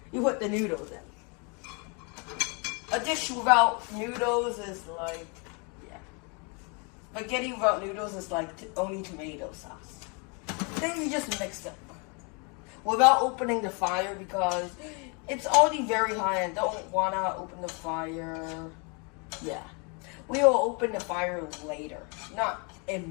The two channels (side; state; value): right; quieter; 33.8 dB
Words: you put the noodles in. A dish without noodles is spaghetti without noodles is like only tomato sauce. Then you just mix it without opening the fire because it's already very high and don't want to open the fire. Yeah. We will open the fire later, not